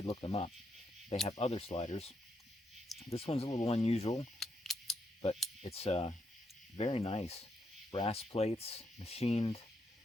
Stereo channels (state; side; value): normal; both; correlation 0.79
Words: look them up. They have other sliders. This one's a little unusual, but it's very nice. Brass plates, machined.